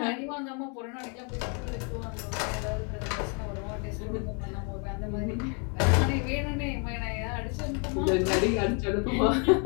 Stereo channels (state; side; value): quieter; right; 37.0 dB